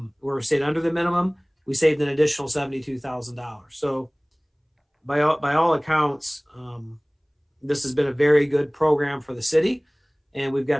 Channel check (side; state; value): both; identical; correlation 1.00